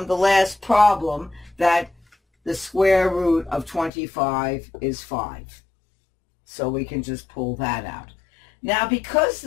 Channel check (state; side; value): drops out; right; at 3.9 s